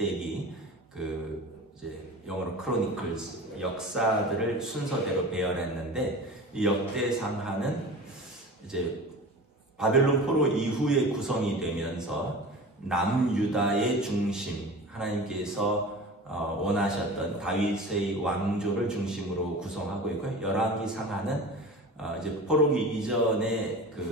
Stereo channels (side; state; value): both; normal; correlation 0.35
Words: 이제 영어로 크로니클스 역사들을 순서대로 배열했는데 이 역대 상하는 이제 바벨론 포로 이후에 구성이 되면서 남유다의 중심 하나님께서 원하셨던 다윗의 왕조를 중심으로 구성하고 있고요. 열왕기 상하는 이제 포로기 이전의